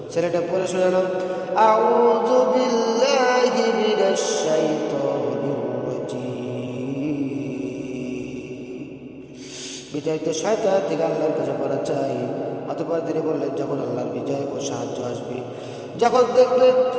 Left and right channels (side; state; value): both; identical; correlation 1.00